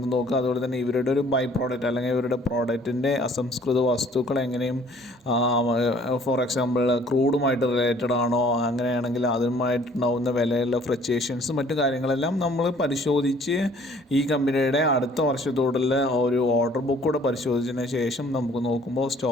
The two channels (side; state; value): both; normal; correlation 0.56